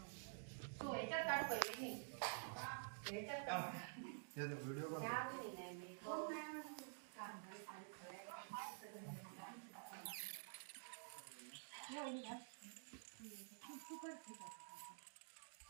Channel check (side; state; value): left; silent; digital silence